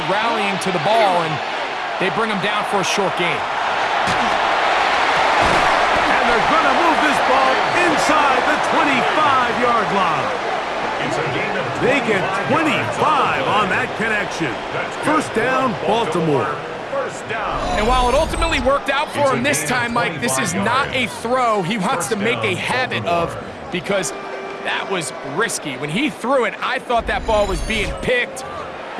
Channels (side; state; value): both; identical; correlation 1.00